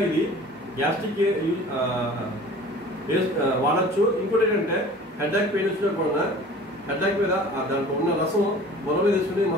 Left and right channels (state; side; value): normal; both; correlation 0.44